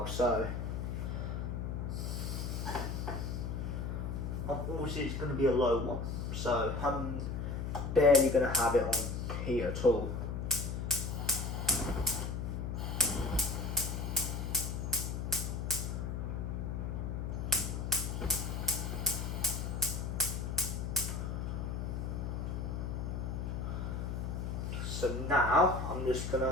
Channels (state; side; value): noise; left; hum, 3 dB below the sound